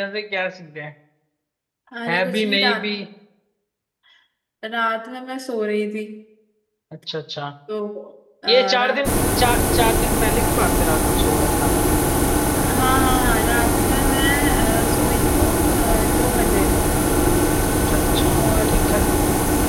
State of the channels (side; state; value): both; identical; correlation 1.00